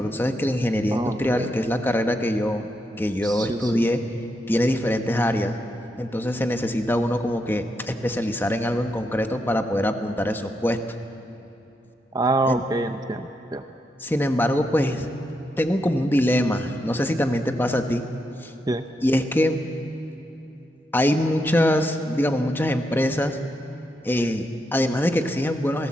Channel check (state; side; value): normal; both; correlation 0.82